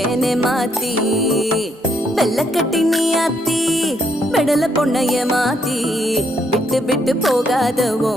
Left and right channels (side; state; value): both; normal; correlation 0.73